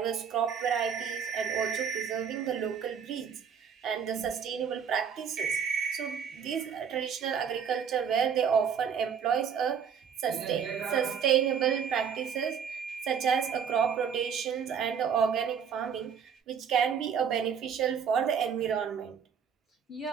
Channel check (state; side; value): quieter; left; 7.3 dB